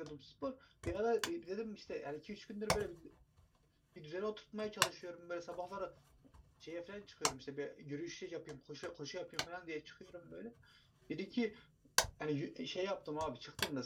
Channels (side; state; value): both; identical; correlation 1.00